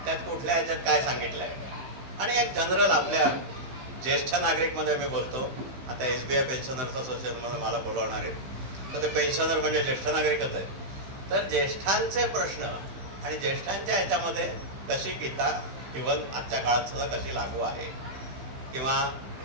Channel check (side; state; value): left; late; 16 ms